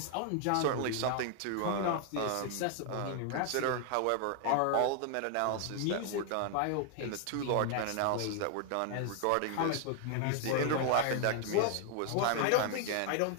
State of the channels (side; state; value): both; different; correlation 0.00